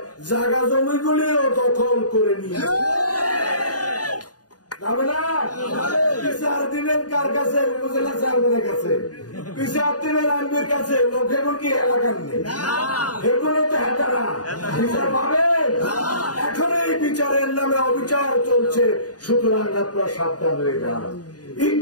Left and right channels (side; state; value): right; late; 0.68 ms